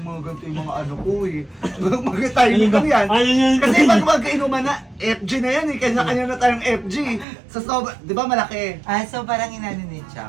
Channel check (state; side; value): drops out; left; at 7.2 s